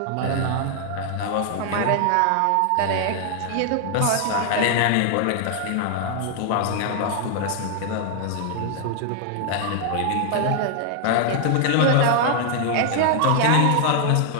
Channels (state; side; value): different; both; correlation 0.00